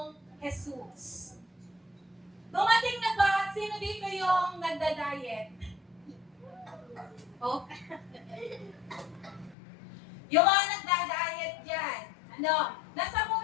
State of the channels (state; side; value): drops out; right; at 9.6 s